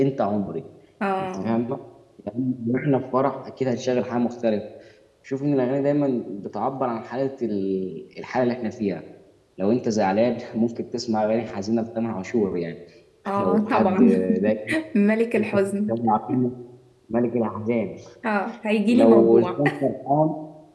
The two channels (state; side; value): identical; both; correlation 1.00